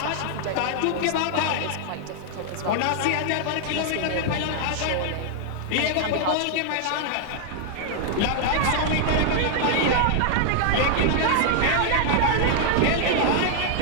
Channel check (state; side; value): different; both; correlation 0.00